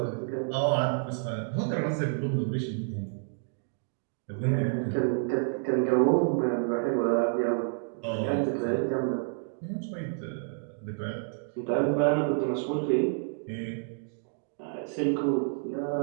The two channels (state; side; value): silent; left; digital silence